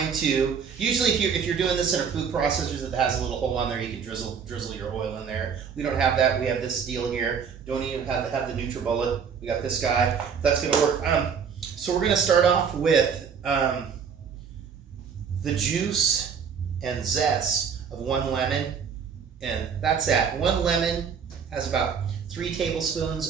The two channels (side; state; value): left; quieter; 6.8 dB